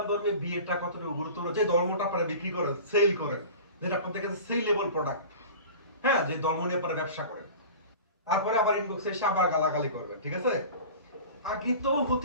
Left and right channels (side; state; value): both; inverted; correlation -0.37